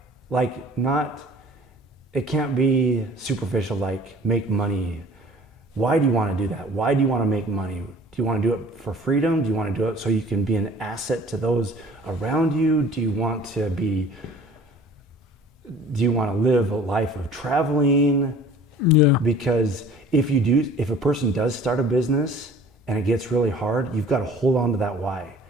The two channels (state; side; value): normal; both; correlation 0.48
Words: Like, it can't be superficial, like make money. Why do you want to do that? Why do you want to make money? Do you want to do it for freedom? Do you want to do it so you can be an asset to those around you? Do you want to live a life of traveling? Yeah. Because if a person does start a business and it gets really hard, you've got to hold on to that why.